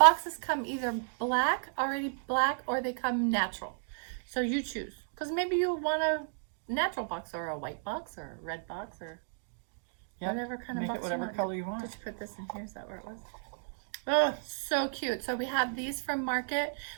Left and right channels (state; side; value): silent; left; digital silence